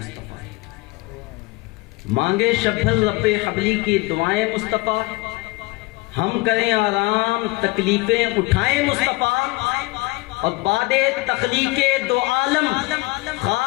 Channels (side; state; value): right; quieter; 23.8 dB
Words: مانگے شب بھر رب حبلی کی دعائیں مصطفیٰ، ہم کریں آرام تکلیفیں اٹھائیں مصطفیٰ۔ اور بعد تخلیق دو عالم